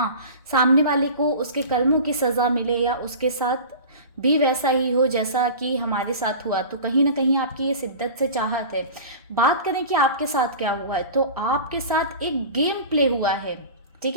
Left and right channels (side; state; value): both; inverted; correlation -0.35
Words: सामने वाले को उसके कर्मों की सज़ा मिले या उसके साथ भी वैसा ही हो जैसा कि हमारे साथ हुआ। तो कहीं ना कहीं आपकी ये शिद्दत से चाहत है। बात करें कि आपके साथ क्या हुआ है, तो आपके साथ एक गेम प्ले हुआ है। ठीक